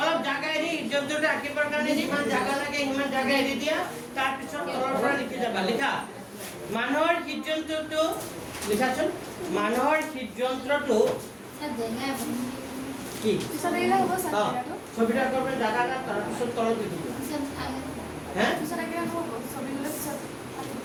অলপ জাগা এৰি হৃদযন্ত্ৰটো আঁকিবৰ কাৰণে যিমান জাগা লাগে সিমান জাগা এৰি দিয়া তাৰপিছত তলৰ পৰা লিখি যাবা লিখা মানুহৰ হৃদযন্ত্ৰটো লিখাচোন মানুহৰ হৃদযন্ত্ৰটো কি ছবিটা আঁকিবৰ জাগা এটা তাৰপিছত তলত লিখি দিবা হে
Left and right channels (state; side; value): identical; both; correlation 1.00